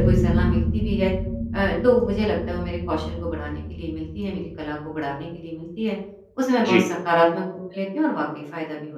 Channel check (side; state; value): both; identical; correlation 1.00